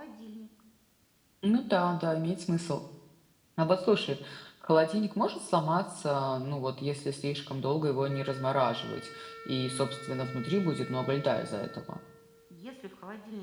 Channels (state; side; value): identical; both; correlation 1.00